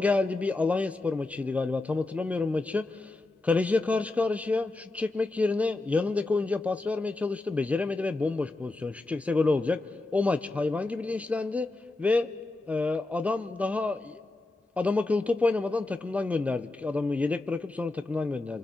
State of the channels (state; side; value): quieter; right; 3.1 dB